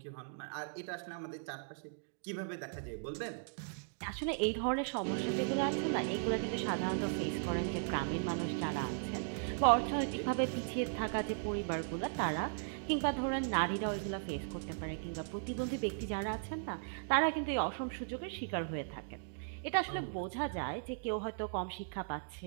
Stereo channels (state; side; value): silent; left; digital silence